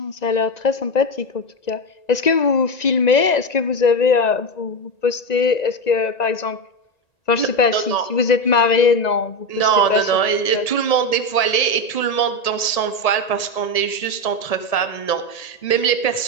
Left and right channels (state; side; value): late; right; 1.8 ms